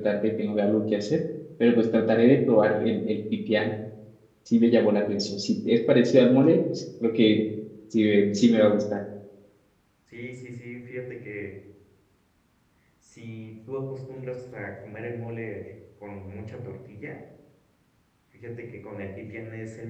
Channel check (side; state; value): both; identical; correlation 1.00